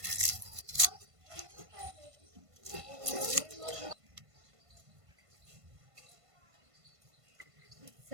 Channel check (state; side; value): late; left; 1.5 ms